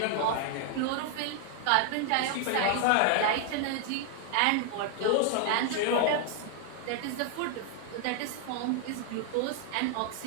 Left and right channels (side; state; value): both; different; correlation 0.00